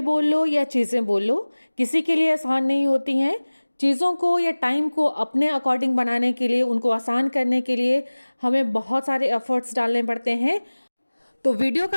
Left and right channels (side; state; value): both; inverted; correlation -1.00